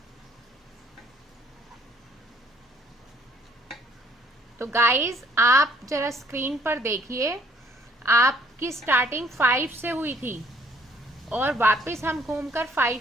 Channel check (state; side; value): normal; both; correlation 0.63